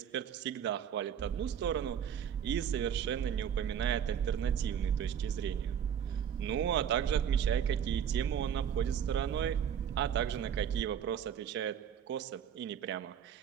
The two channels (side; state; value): left; quieter; 8.6 dB